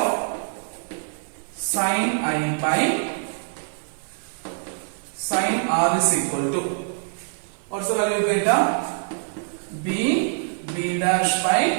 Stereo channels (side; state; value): left; silent; digital silence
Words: sine I by sine R is equal to, what's the value you get? B dash by